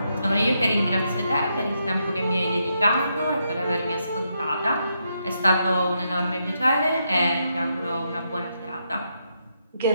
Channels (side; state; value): both; inverted; correlation -0.80